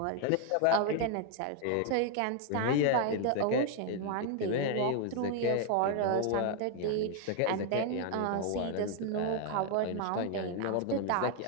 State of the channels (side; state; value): both; different; correlation 0.00